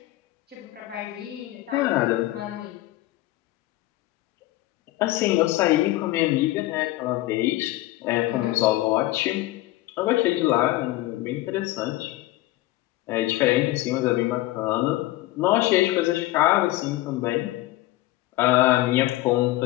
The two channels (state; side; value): quieter; right; 17.3 dB